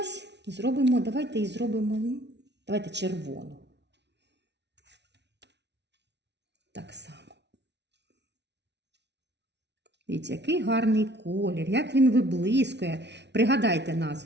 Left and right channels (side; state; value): left; late; 0.50 ms